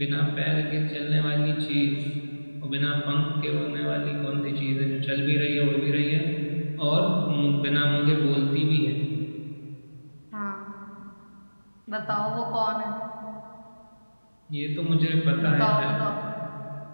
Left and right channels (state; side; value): inverted; both; correlation -1.00